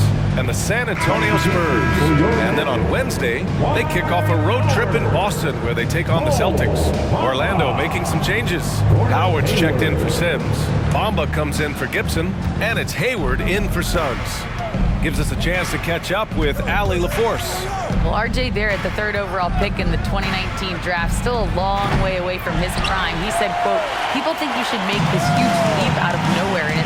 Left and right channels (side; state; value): both; identical; correlation 1.00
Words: and the San Antonio Spurs. And then on Wednesday, they kick off a road trip in Boston where they take on the Celtics. Orlando making some changes. Howard's checked in for Sims. Bamba comes in for Gibson. And it's Hayward in for Suggs. Gives us a chance to catch up with Allie LaForce. Well, RJ Barrett, the 3rd overall pick in the 2019 draft, still a long way away from his prime. He said, quote, "People think you should make this huge leap out of nowhere, and